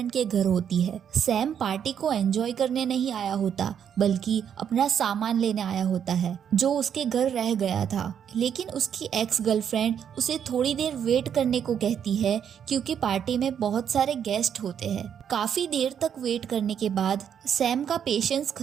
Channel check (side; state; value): left; quieter; 8.4 dB